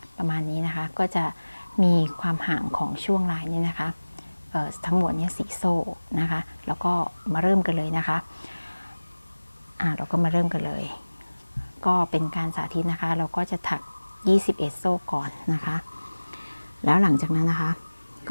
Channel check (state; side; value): inverted; both; correlation -1.00